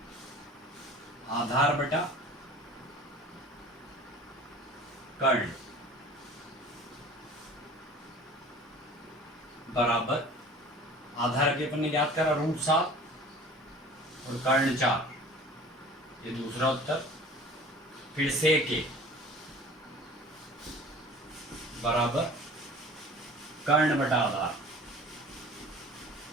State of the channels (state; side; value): normal; both; correlation 0.44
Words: आधार बटा कर्ण बराबर, आधार के अपन ने ज्ञात करा √7 और कर्ण 4, ये दूसरा उत्तर। फिर से के बराबर कर्ण बटा आधार,